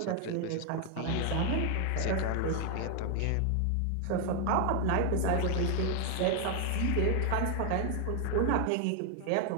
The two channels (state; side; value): different; both; correlation 0.00